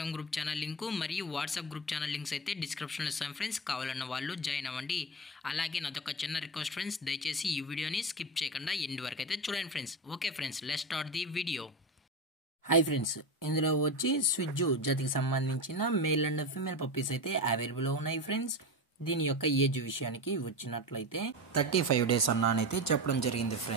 గ్రూప్ ఛానల్ లింకు మరియు వాట్సాప్ గ్రూప్ ఛానల్ లింక్స్ అయితే డిస్క్రిప్షన్లో ఇస్తాను ఫ్రెండ్స్. కావాలన్న వాళ్ళు జాయిన్ అవ్వండి. అలాగే నాదొక చిన్న రిక్వెస్ట్ ఫ్రెండ్స్, దయచేసి ఈ వీడియోని స్కిప్ చేయకుండా ఎండ్ వరకు అయితే చూడండి friends. Okay friends, let's start the video. Hi friends, ఇందులో వచ్చి స్విజ్జు జాతికి సంబంధించిన మేల్ అండ్ ఫీమేల్ పప్పీస్ అయితే అవైలబుల్ ఉన్నాయి ఫ్రెండ్స్. దీని యొక్క ఏజ్ విషయానికి వచ్చినట్లయితే 35 days అన్నానైతే చెప్పడం జరిగింది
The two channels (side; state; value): both; normal; correlation 0.21